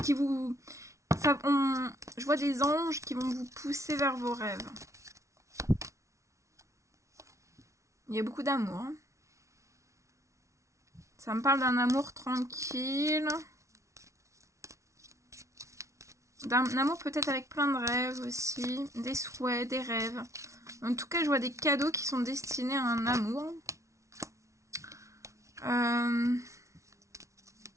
Qui vous... je vois des anges qui vont vous pousser vers vos rêves. Il y a beaucoup d'amour. Hein. Ça me parle d'un amour tranquille. D'un amour peut-être avec plein de rêves aussi. Des souhaits, des rêves. En tout cas, je vois des cadeaux qui sont destinés à un amour.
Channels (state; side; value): late; left; 0.14 ms